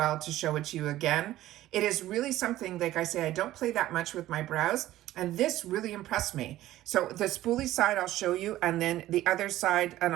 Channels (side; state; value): left; quieter; 14.8 dB